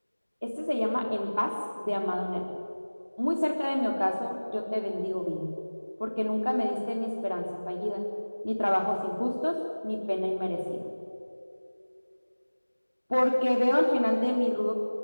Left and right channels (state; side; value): inverted; both; correlation -1.00